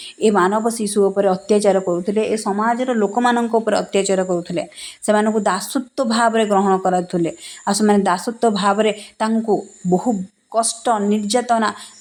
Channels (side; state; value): both; identical; correlation 1.00